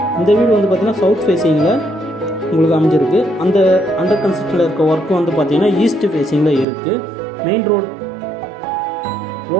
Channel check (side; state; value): left; drops out; at 6.7 s